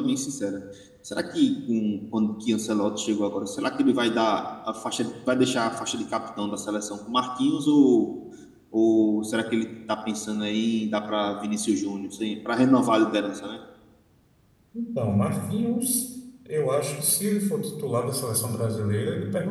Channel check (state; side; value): identical; both; correlation 1.00